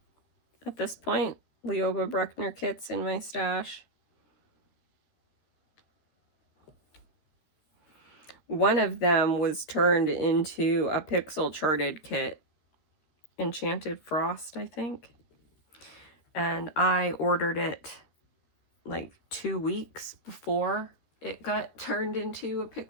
at this point Leoba Bruckner kits in my stash. One of them was turned into a pixel charted kit, Enchanted Frost, I think. And I ordered it like 2 weeks before it got turned into a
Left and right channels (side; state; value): right; late; 13 ms